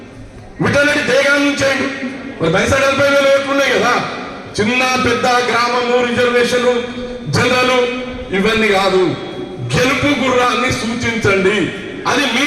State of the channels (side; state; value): both; identical; correlation 1.00